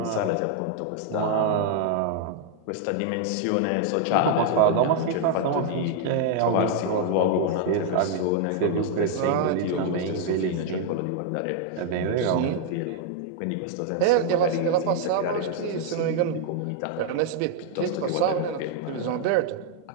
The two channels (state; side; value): different; both; correlation 0.00